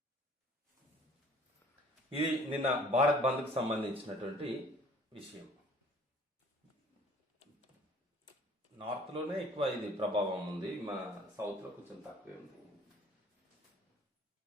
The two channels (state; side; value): normal; both; correlation 0.53